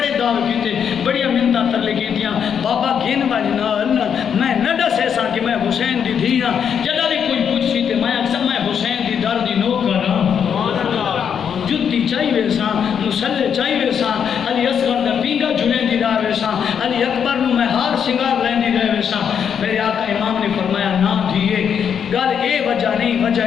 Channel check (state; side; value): quieter; right; 7.8 dB